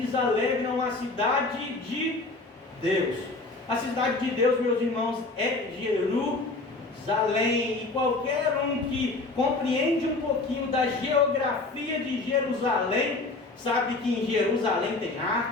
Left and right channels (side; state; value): right; quieter; 3.3 dB